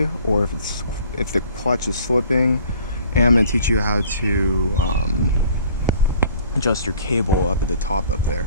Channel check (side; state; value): both; inverted; correlation -0.51